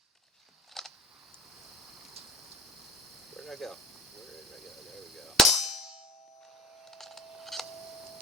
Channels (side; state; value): both; normal; correlation 0.43